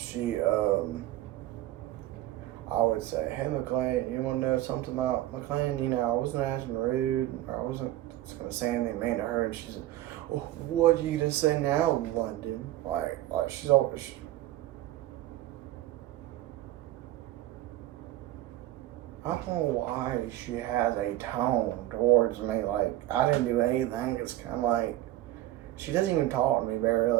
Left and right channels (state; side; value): quieter; left; 14.9 dB